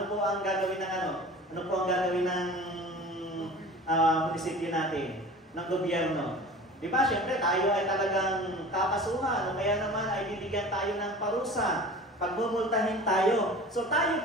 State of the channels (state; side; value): normal; both; correlation 0.39